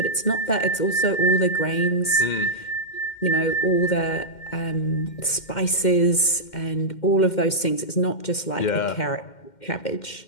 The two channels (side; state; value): right; late; 2.1 ms